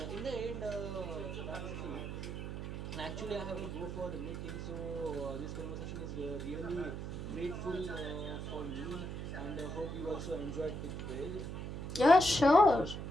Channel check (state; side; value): noise; right; hum, 5 dB below the sound